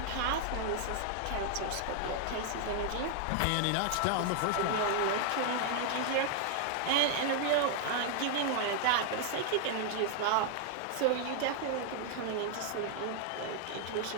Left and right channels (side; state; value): both; different; correlation 0.00